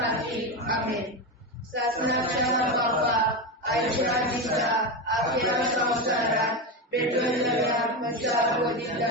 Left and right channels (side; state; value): both; normal; correlation 0.15